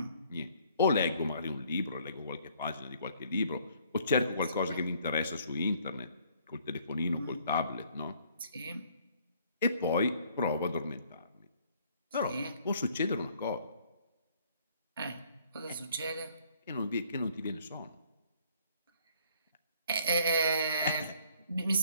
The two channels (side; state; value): both; inverted; correlation -0.62